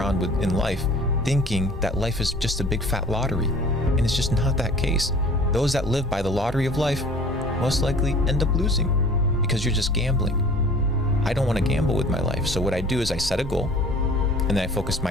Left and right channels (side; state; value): both; normal; correlation 0.47